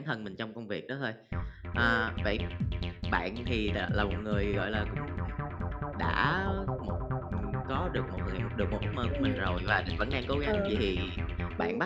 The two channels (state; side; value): identical; both; correlation 1.00